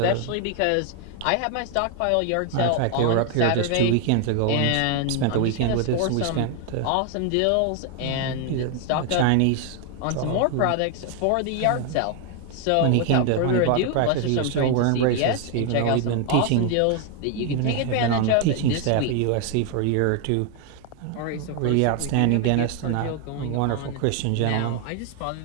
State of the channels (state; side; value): different; both; correlation 0.00